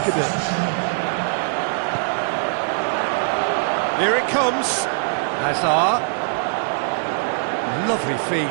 a bit. Here it comes. Hazard. Lovely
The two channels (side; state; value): left; silent; digital silence